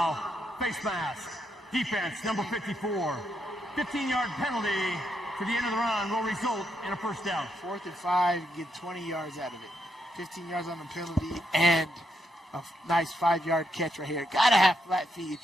face mask, defense, number 54. 15-yard penalty to the end of the run will result in a 1st down. 4th and 5, get 20 yards out of it. 15 yards on the penalty and a nice 5-yard catch right here. Got to have flat feet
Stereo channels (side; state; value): both; normal; correlation 0.80